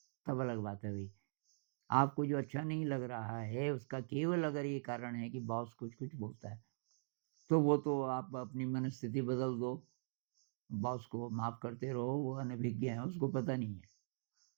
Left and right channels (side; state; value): left; silent; digital silence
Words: तब अलग बात है भई। आपको जो अच्छा नहीं लग रहा है, उसका केवल अगर ये कारण है कि बॉस कुछ-कुछ बोलता है, तो वो तो आप अपनी मनस्थिति बदल दो, बॉस को माफ़ करते रहो, वो अनभिज्ञ है, उसको पता नहीं है।